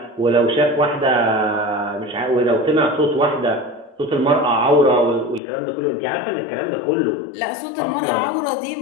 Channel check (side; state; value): right; drops out; at 5.4 s